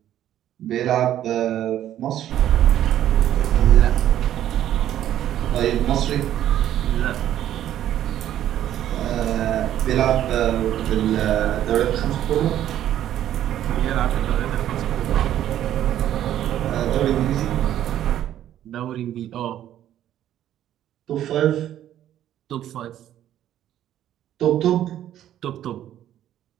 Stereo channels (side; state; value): left; quieter; 11.7 dB